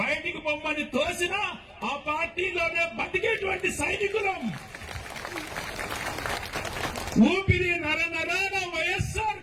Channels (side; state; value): both; identical; correlation 1.00